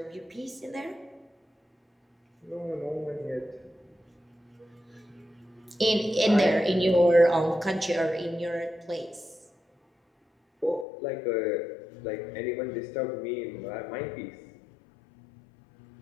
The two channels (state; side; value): drops out; right; at 10.9 s